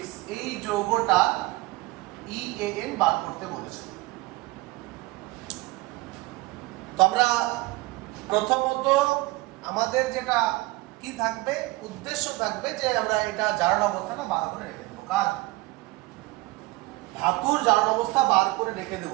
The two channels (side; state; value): left; quieter; 21.6 dB